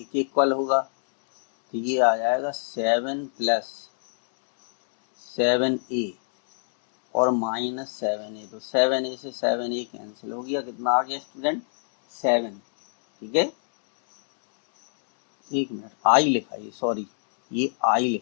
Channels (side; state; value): right; silent; digital silence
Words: के इक्वल होगा, तो ये आ जाएगा 7 प्लस 7a और -7a, तो 7a से 7a कैंसिल हो गया, कितना आ गया स्टूडेंट 7, ठीक है। एक मिनट, आई लिखा है, सॉरी ये आई